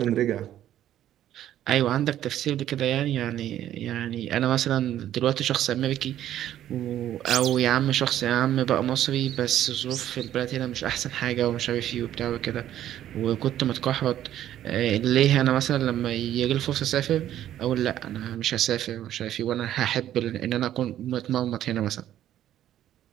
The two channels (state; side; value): quieter; left; 11.9 dB